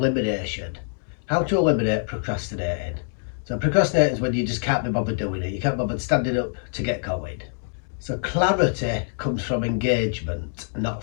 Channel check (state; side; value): silent; right; digital silence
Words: How to eliminate procrastinating. So procrastinating is when you just can't be bothered doing it. You can't bother standing up to get going. So clarity comes from engagement,